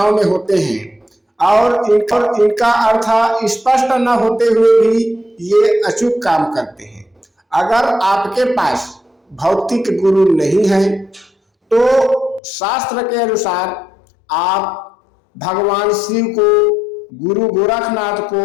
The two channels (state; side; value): drops out; right; at 12.4 s